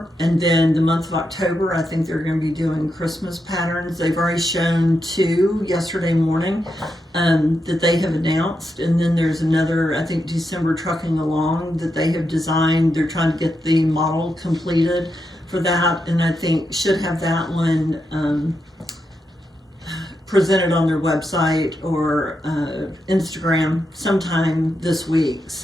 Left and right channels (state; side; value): normal; both; correlation 0.85